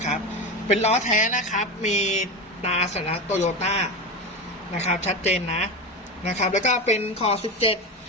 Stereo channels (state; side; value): normal; both; correlation 0.21